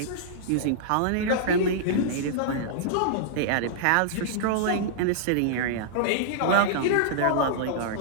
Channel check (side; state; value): both; different; correlation -0.02